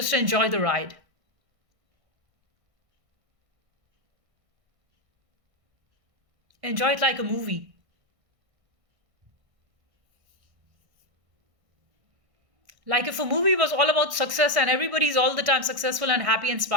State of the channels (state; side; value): late; left; 1.6 ms